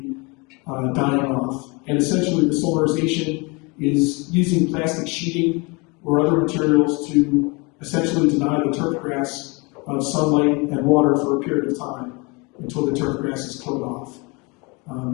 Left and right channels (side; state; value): right; quieter; 28.5 dB